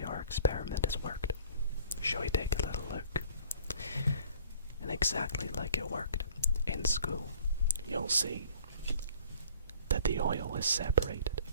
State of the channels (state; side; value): inverted; both; correlation -0.52